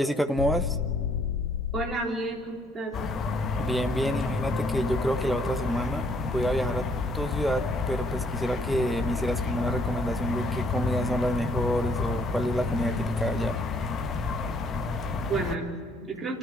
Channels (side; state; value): both; normal; correlation 0.66